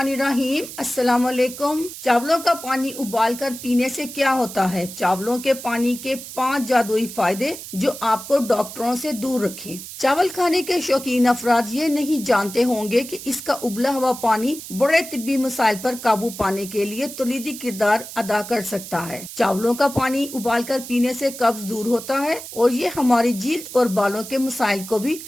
अस्सलाम वालेकुम। चावलों का पानी उबालकर पीने से क्या होता है? चावलों के पानी के 5 जादुई फायदे जो आपको डॉक्टरों से दूर रखें। चावल खाने के शौकीन अफराद ये नहीं जानते होंगे कि इसका उबला हुआ पानी बड़े तिब्बी मसाइल पर काबू पाने के लिए कलीदी किरदार अदा कर सकता है। चावलों का पानी उबालकर पीने से कब्ज दूर होता है और ये हमारी जील्द और बालों के मसाइल को भी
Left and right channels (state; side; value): noise; right; hiss, 12 dB below the sound